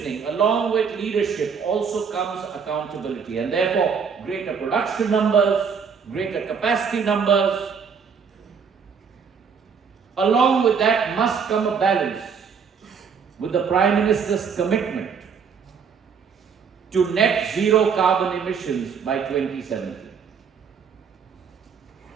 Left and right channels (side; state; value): left; quieter; 6.3 dB